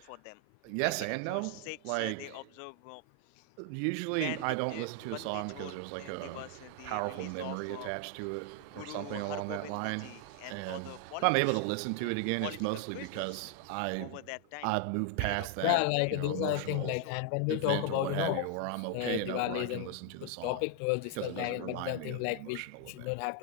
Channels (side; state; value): both; different; correlation 0.00